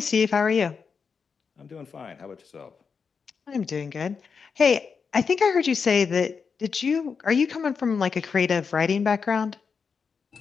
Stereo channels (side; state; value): right; quieter; 5.7 dB